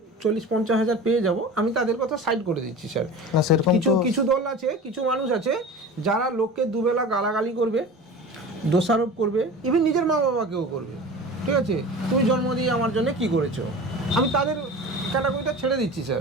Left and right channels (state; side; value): normal; both; correlation 0.35